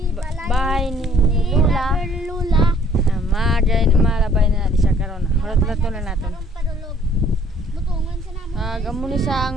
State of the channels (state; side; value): normal; both; correlation 0.59